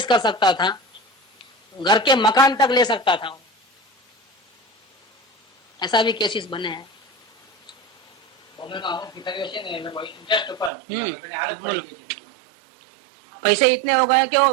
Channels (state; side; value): drops out; left; at 10.7 s